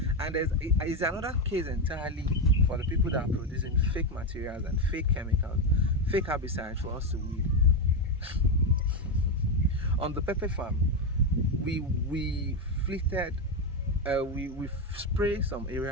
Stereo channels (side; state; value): both; normal; correlation 0.09